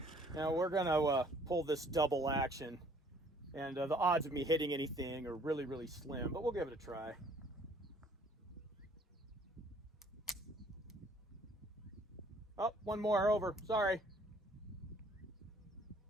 Now we're gonna pull this double action, and the odds of me hitting anything are really, really slim, but we'll give it a try. Oh, one more over. Sorry.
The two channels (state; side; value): normal; both; correlation 0.59